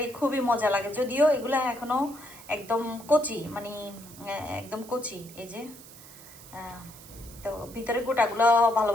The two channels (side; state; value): right; noise; hiss, 18 dB below the sound